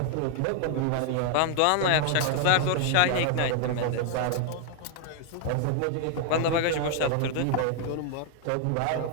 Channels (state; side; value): different; both; correlation 0.00